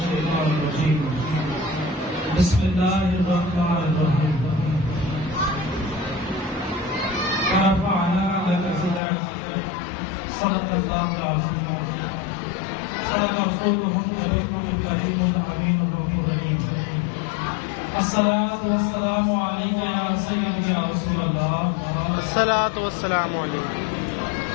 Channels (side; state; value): right; drops out; at 9.0 s